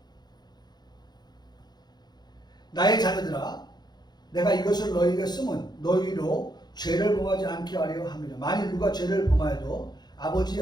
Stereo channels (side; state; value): right; late; 0.20 ms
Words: 나의 자녀들아 내가 이것을 너희에게 쓰면 너희로 죄를 범하지 않게 하려 함이라. 만일 누가 죄를 범하여도 아버지